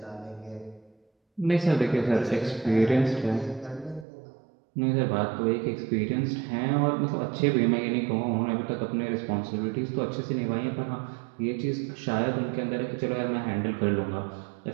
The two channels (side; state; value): left; drops out; at 4.0 s